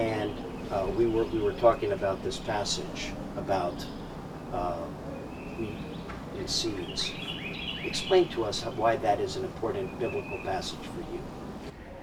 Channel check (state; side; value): identical; both; correlation 1.00